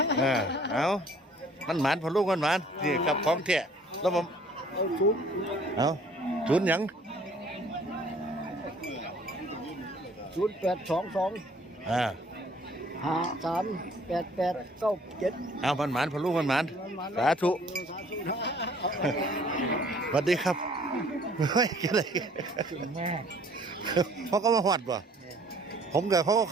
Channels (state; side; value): normal; both; correlation 0.56